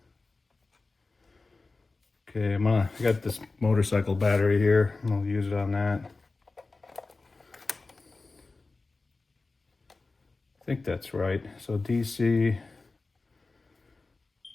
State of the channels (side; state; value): right; quieter; 3.6 dB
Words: Okay, I got this motorcycle battery here. I'll use it on that. I think that's right. So DC.